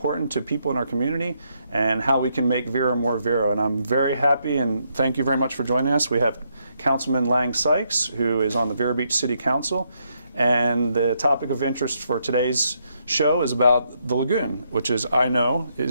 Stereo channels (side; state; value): both; inverted; correlation -0.77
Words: to people in our community, and how we can make Vero more Vero. And I'm very happy, and thank you very much for joining us. We have Councilman Lange Sykes, who is on the Vero Beach City Council, and the topic of interest for today's show is about the lagoon, which is, and